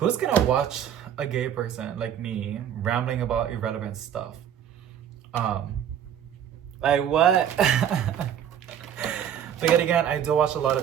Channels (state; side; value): quieter; left; 9.4 dB